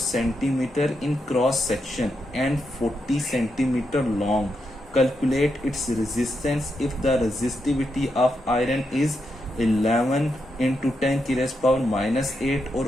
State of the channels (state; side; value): normal; both; correlation 0.84